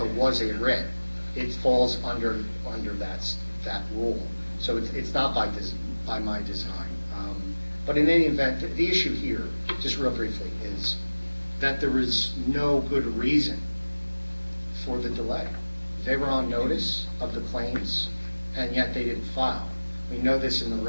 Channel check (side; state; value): both; inverted; correlation -1.00